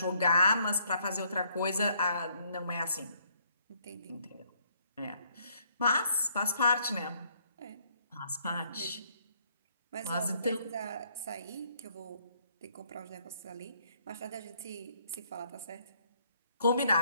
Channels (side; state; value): both; inverted; correlation -0.68